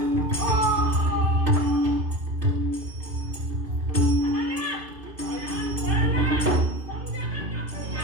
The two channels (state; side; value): late; left; 2.6 ms